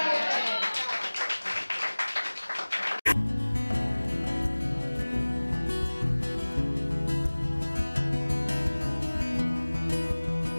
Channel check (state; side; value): inverted; both; correlation -1.00